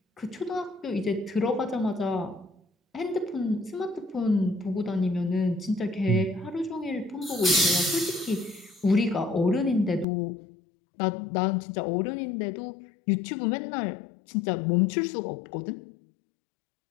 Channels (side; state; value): right; drops out; at 10.1 s